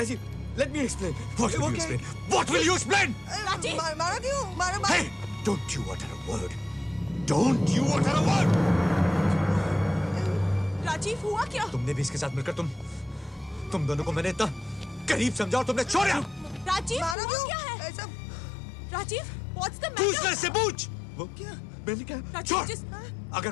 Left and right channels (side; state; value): right; drops out; at 17.2 s